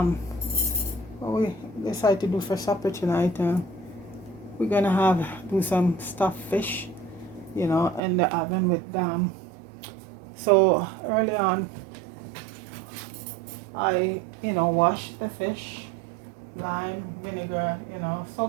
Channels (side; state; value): left; drops out; at 8.0 s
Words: we decided to do for supper tonight, we're gonna do some stuffed fish, in the oven with so early on I, washed the fish, lime, vinegar,